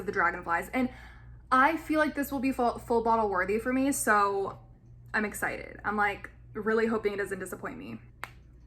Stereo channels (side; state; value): both; identical; correlation 1.00